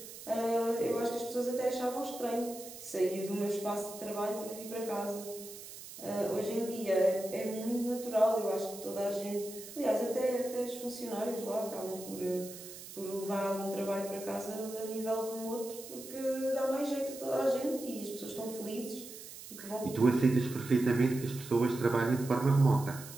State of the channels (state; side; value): noise; right; hiss, 14 dB below the sound